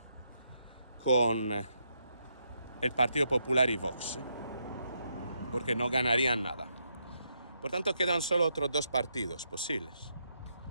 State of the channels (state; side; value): inverted; both; correlation -0.79